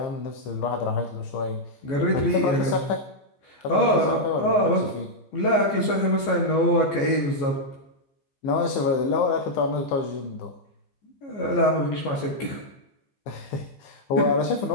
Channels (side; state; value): right; late; 14 ms